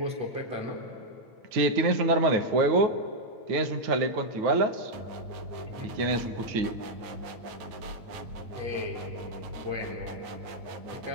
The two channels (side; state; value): left; late; 9.4 ms